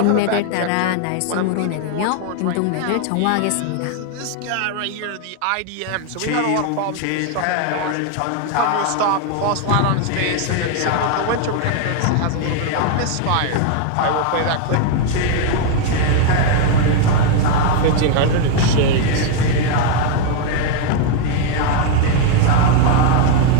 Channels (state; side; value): different; both; correlation 0.01